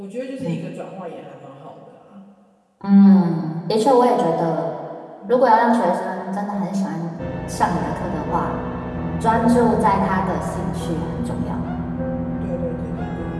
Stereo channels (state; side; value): identical; both; correlation 1.00